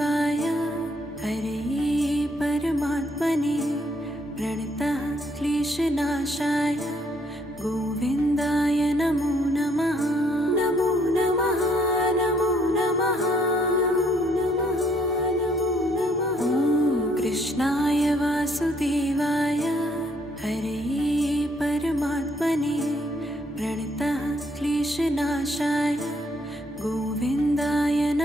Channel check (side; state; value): both; normal; correlation 0.68